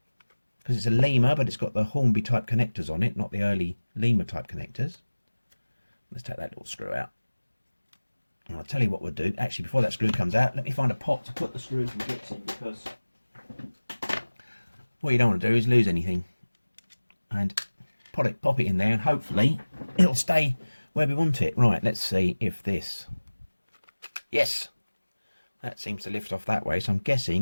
because it's a Lima, but it's got the Hornby type connectors on it, not the early Lima type connectors. Let's take that little screw out. And I'll tell you what we'll do. Actually, before that screw comes out, let me find a pot to put the screws and bits in, because what you don't want to do is lose anything. And pop it in there, and hopefully it'll stay where we want it. Right, let's see if this... Yes! That seems to lift off that way, so I'm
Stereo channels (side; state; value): both; inverted; correlation -1.00